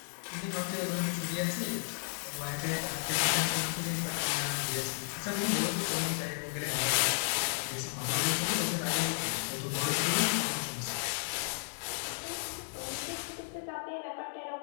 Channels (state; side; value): silent; right; 55 dB below the other